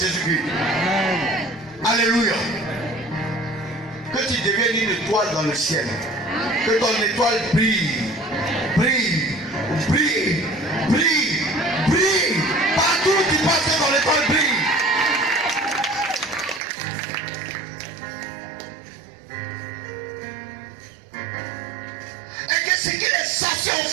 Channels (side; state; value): left; drops out; at 16.6 s